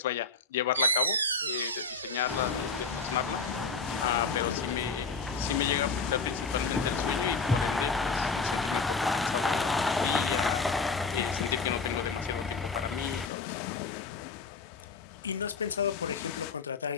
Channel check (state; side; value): quieter; right; 4.5 dB